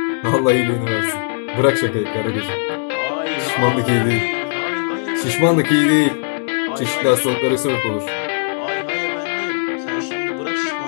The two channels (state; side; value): silent; right; digital silence